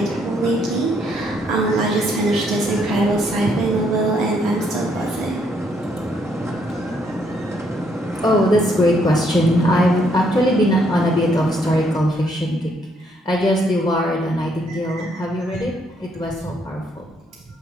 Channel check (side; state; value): both; normal; correlation 0.71